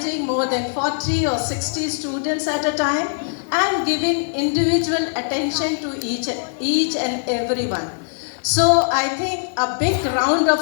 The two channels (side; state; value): right; silent; digital silence